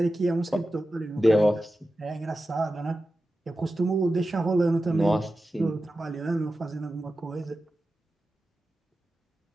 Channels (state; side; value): normal; both; correlation 0.93